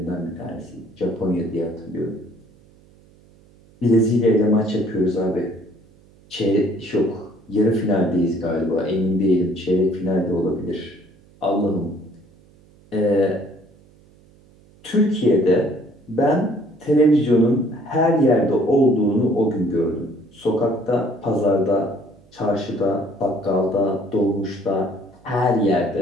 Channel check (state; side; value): noise; right; hum, 28 dB below the sound